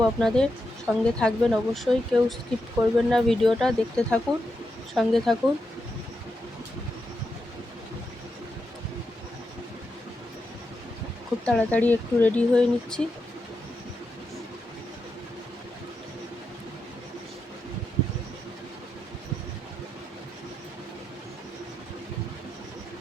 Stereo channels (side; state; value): both; normal; correlation 0.86